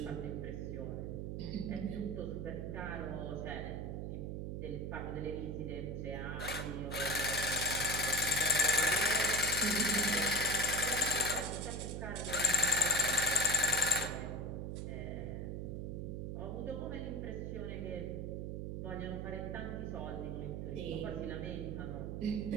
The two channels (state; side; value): noise; right; hum, 4 dB below the sound